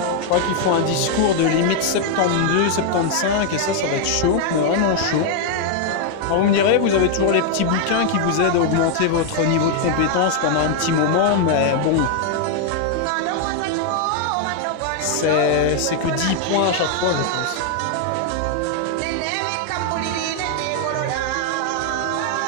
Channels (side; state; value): both; different; correlation 0.00